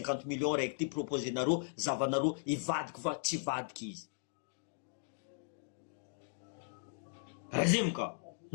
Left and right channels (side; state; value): right; silent; digital silence